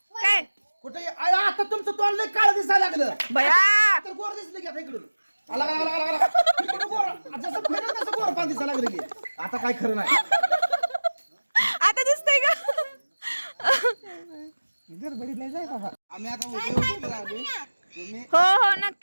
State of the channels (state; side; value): inverted; both; correlation -1.00